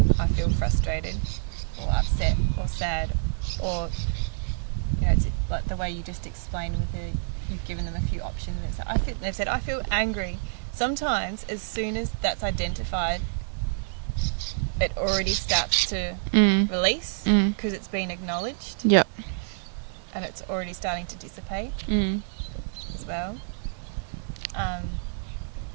I feel frustrated or upset or sad, or it's like the way you just explained with you've given them a few options. They've said I feel angry. Sometimes as soon as that's identified, it already starts to release because it's been acknowledged. Yep. And it's already starting to dissipate as well.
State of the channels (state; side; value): silent; left; 60 dB below the other